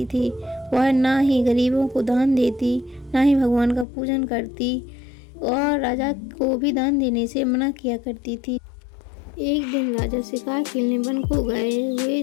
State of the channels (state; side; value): drops out; right; at 3.9 s